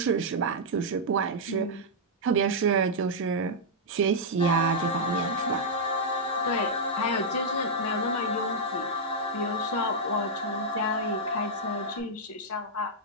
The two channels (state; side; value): normal; both; correlation -0.07